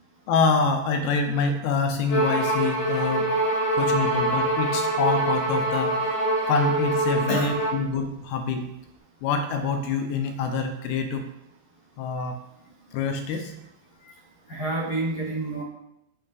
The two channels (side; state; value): right; late; 11 ms